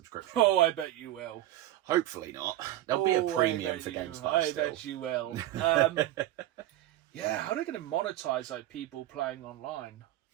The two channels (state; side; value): quieter; left; 14.3 dB